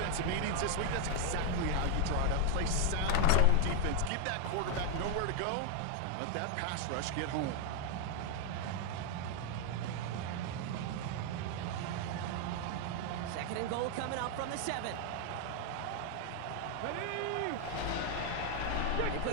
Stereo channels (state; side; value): different; both; correlation 0.01